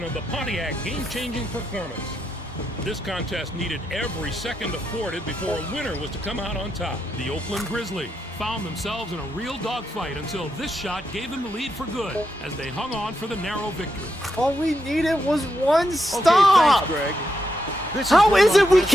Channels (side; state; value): both; normal; correlation 0.83